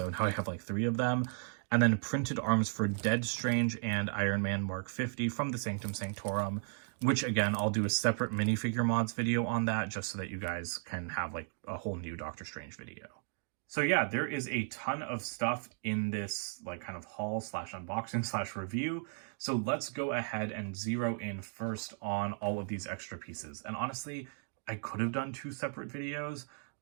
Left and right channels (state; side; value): silent; left; 54 dB below the other